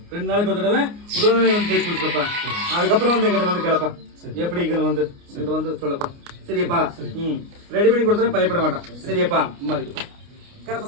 2 நாளைக்கு ஒரு தடவை உடல்நிலை வந்து தேய்ச்சி குளிச்சுக்கப்பா. அதுக்கப்புறம் வந்து எங்கிட்ட வந்து கேளப்பா, எப்படி வந்து எங்கிட்ட வந்து சொல்லப்பா. சரியாப்பா. ரெடி பண்ணி கொடுத்தா பயப்பட மாட்டான். சரியாப்பா.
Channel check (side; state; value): left; late; 29 ms